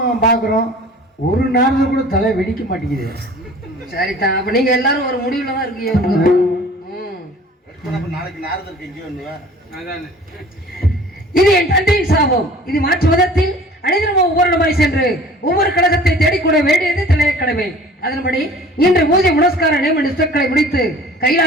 பாக்குறோம் ஒரு நேரத்துல கூட தலை வெடிக்க மாட்டேங்குது. சரிதான், அப்ப நீங்க எல்லாரும் ஒரு முடிவுல தான் இருக்கீங்க. இது என் தந்தையின் சாபம். இது மாற்று மதத்தில் அனைவரும் ஒவ்வொரு இடமாய் சென்று ஒவ்வொரு கழகத்தை தேடிக்கூட வேண்டியது தலைய கடமை. அதன்படி இன்று பூஜை புனஸ்கார நியம நிஷ்டங்களை முடித்து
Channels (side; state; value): both; normal; correlation 0.47